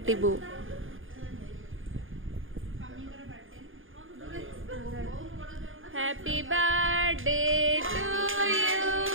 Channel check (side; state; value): left; late; 0.59 ms